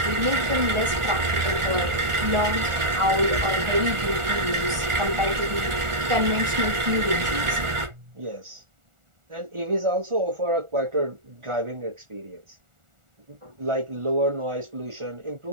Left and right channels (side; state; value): left; late; 1.4 ms